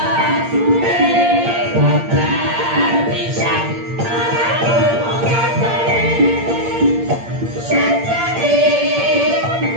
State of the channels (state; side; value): late; left; 8.7 ms